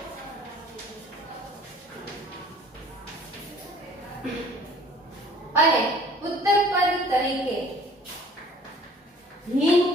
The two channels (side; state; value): both; normal; correlation 0.52